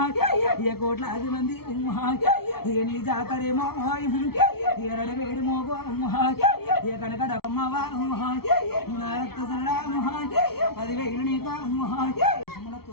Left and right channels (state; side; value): late; right; 0.95 ms